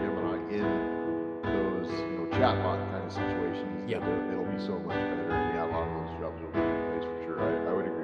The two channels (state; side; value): identical; both; correlation 1.00